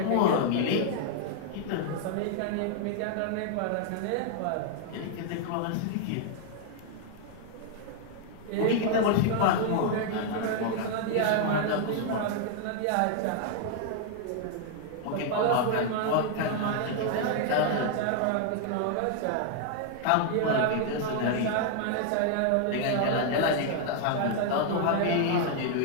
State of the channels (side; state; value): both; different; correlation 0.00